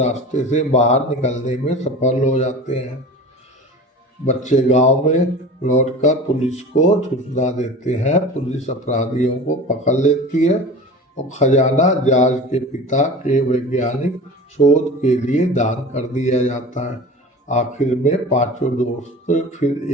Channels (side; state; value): both; normal; correlation 0.36